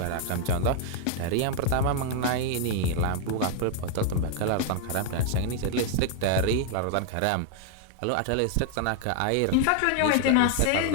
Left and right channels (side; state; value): both; different; correlation 0.00